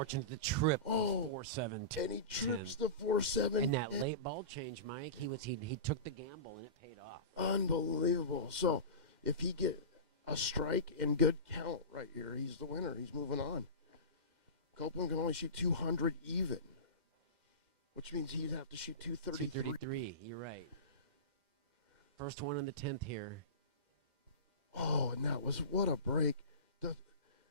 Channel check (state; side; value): late; left; 2.1 ms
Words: to trip. Oh, 4-7. and he trips the 4-7. In that late ball change, Mike, he took the gamble and it paid off. Unbelievable. So if he get a strike and good count right here, he's the winner. He's moving on. Copeland can only shoot 200 even, which means he'd have to shoot 233. 233. You're right. First one in the 10th here. Oh, and that was what a break.